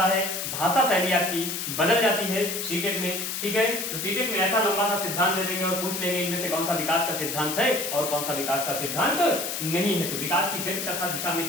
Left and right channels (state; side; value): noise; left; hiss, 4 dB below the sound